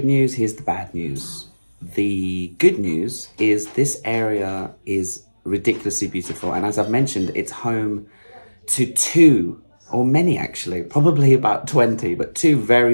news, here's the bad news. The good news is this area is ridiculously beautiful, and as I've mentioned, it's home to 2, or many actually, probably about 20, but 2 very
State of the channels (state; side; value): inverted; both; correlation -1.00